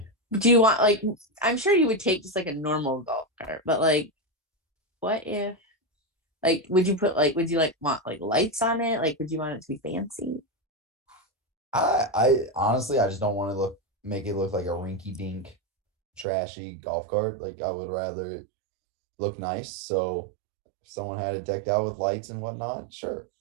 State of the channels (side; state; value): left; drops out; at 16.2 s